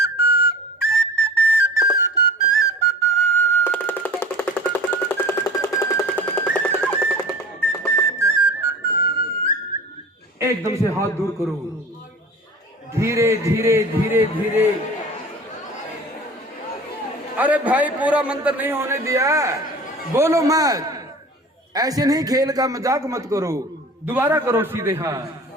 एकदम से हाथ दूर करो, धीरे धीरे धीरे धीरे। अरे भाई, पूरा मंत्र नहीं होने दिया, बोलो मत। ऐसे नहीं, खेल का मजाक मत करो। दोबारा करो सीधे हाथ,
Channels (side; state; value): both; normal; correlation 0.41